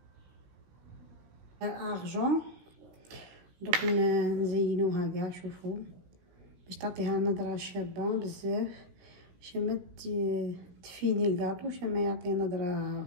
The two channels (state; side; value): late; left; 17 ms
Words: ارجون دوك نزينوها كاع. شوفوا باش تعطيها نظره شابه بزاف، باش ما تفيني الكاطو، باش ما يعطي نظره